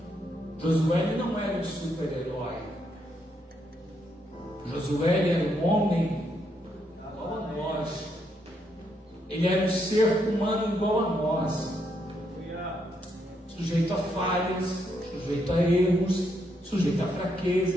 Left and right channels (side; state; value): both; normal; correlation 0.77